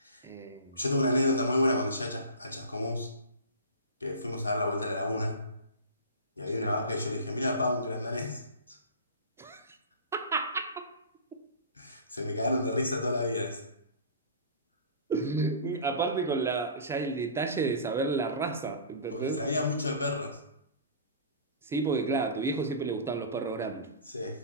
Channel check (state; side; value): inverted; both; correlation -0.37